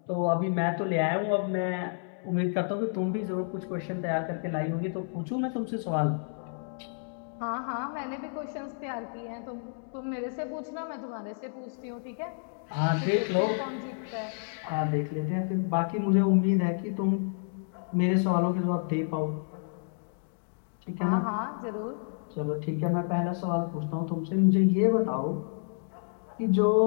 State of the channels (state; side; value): silent; right; digital silence